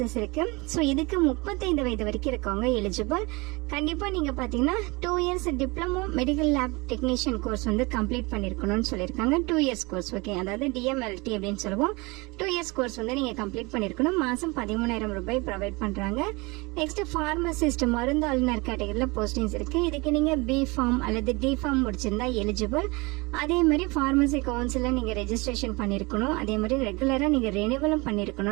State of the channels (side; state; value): left; quieter; 25.6 dB